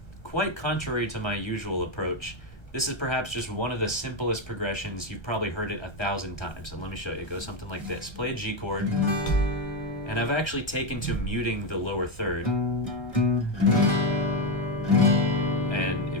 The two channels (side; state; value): right; late; 1.3 ms